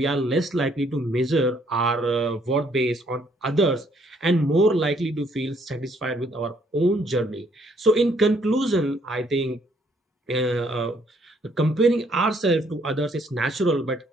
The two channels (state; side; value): normal; both; correlation 0.67